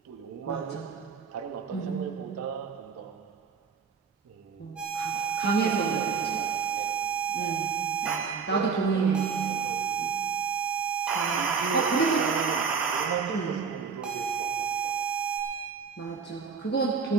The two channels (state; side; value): quieter; left; 5.7 dB